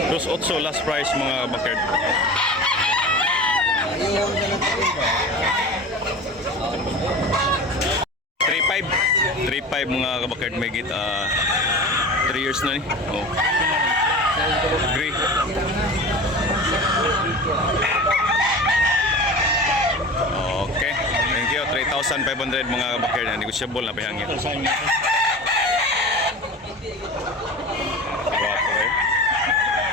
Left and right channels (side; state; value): both; normal; correlation 0.34